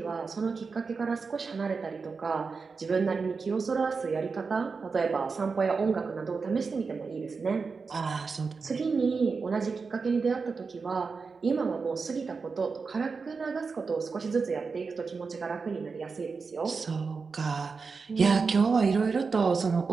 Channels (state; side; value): quieter; left; 4.8 dB